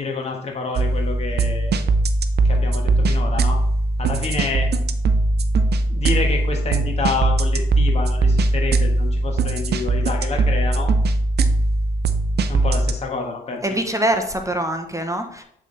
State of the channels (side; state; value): both; normal; correlation 0.77